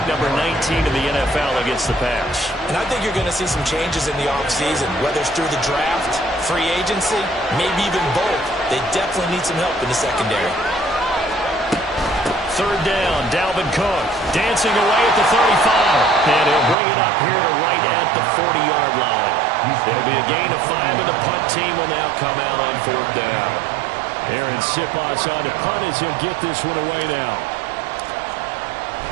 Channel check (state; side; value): drops out; left; at 16.8 s